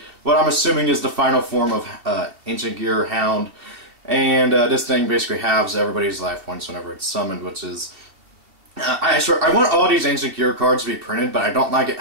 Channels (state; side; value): late; left; 2.6 ms